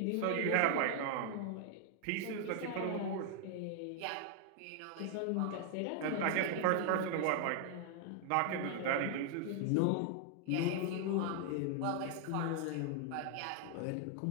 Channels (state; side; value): different; both; correlation 0.00